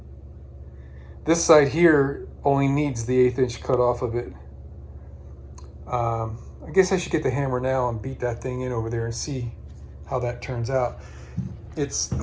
This side here only needs the 1/8 inch cut off of it. I guess I should get the hammer now and beat that thing in over there and see how that turns out. It's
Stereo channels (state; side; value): identical; both; correlation 1.00